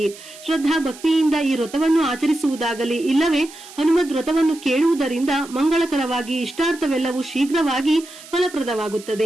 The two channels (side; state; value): right; noise; hiss, 18 dB below the sound